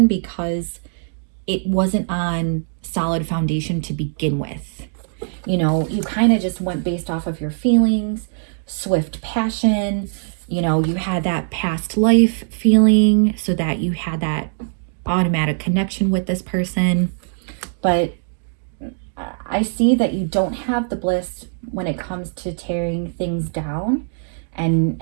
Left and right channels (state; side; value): silent; left; digital silence